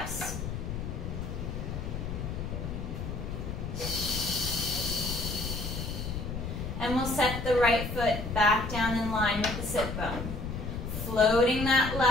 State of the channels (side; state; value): left; noise; rumble, 5 dB below the sound